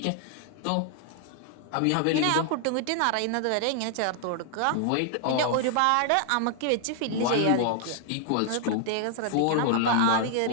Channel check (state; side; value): different; both; correlation 0.00